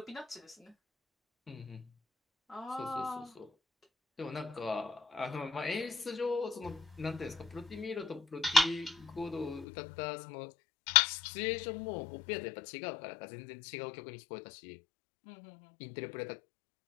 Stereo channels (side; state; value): right; drops out; at 9.7 s